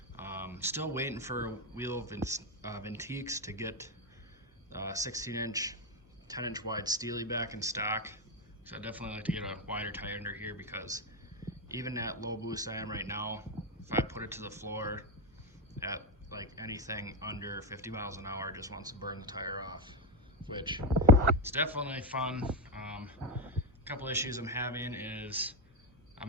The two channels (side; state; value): both; normal; correlation 0.07